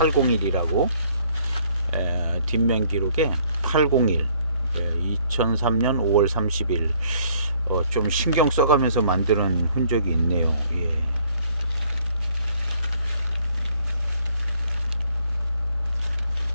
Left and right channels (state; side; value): inverted; both; correlation -0.62